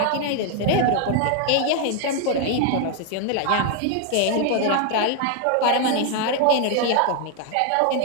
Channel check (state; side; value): different; both; correlation 0.00